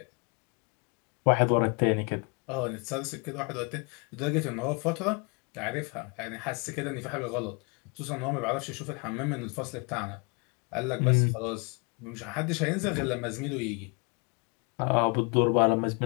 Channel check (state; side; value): quieter; right; 32.6 dB